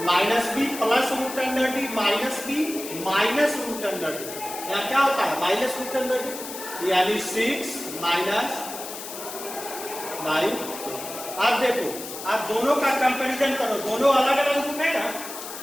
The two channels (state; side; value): noise; left; hiss, 10 dB below the sound